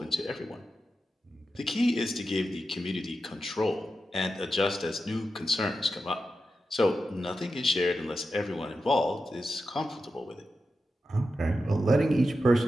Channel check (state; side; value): normal; both; correlation 0.90